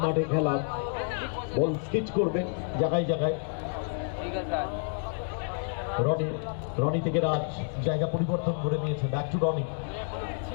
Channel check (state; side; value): silent; right; 58 dB below the other